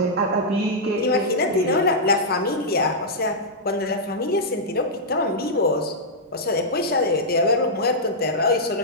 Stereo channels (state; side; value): normal; both; correlation -0.09